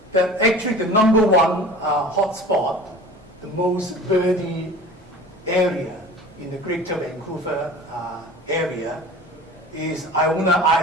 that actually the number one hotspot, the most birdy area in the Greater Vancouver area is Iona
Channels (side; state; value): both; normal; correlation 0.40